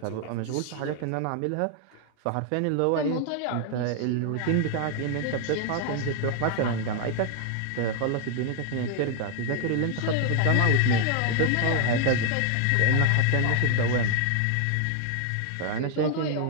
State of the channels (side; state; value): both; different; correlation 0.00